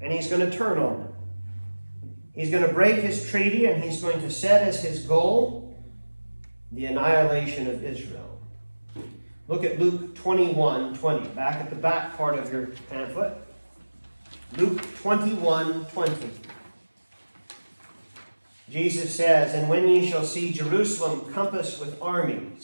And he's going to turn on them. He's going to break his treaty, and he's going to set as his goal the annihilation of Israel. Look at Luke 21:20, back at the back part of your pamphlet. Luke 21:20. Jesus says, "And when ye shall see Jerusalem compassed with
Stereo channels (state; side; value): inverted; both; correlation -1.00